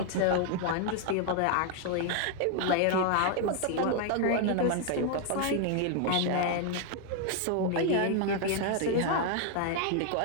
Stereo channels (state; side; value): different; both; correlation 0.00